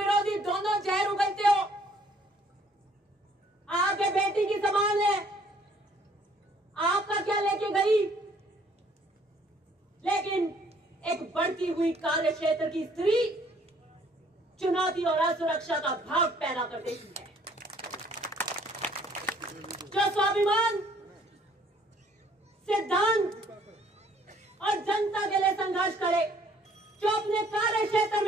दोनों जहर उगलते हो। आपके बेटी की समान है, आपका क्या लेके गई? लेकिन एक बढ़ती हुई कार्य क्षेत्र की स्त्री चुनौती और असुरक्षा का भाव पैदा कर देती है। जो स्वाभिमान, सिद्धांत और जनता के लिए संघर्ष करे, जो अपने कार्य क्षेत्र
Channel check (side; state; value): both; normal; correlation 0.61